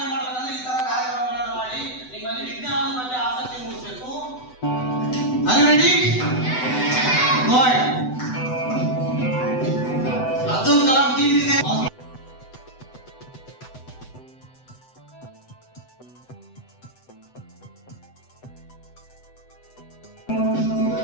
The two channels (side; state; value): right; late; 7.9 ms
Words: ಮಾಡಬೇಕಂದ್ರೆ ಈ ತರ ಕಾರ್ಯಕ್ರಮಗಳನ್ನು ಮಾಡಿ ನಿಮ್ಮಲ್ಲಿ ವಿಜ್ಞಾನದ ಬಗ್ಗೆ ಆಸಕ್ತಿ ಮೂಡಿಸಬೇಕು. Are you ready? Good. Abdul Kalam team ಇದೆ.